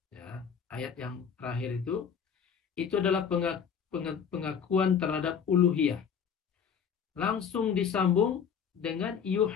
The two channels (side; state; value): right; quieter; 7.2 dB